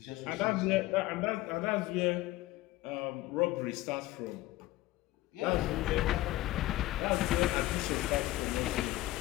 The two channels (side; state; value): right; quieter; 17.3 dB